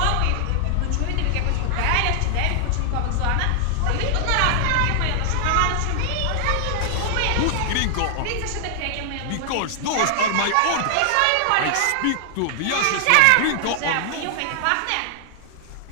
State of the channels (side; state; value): both; different; correlation 0.00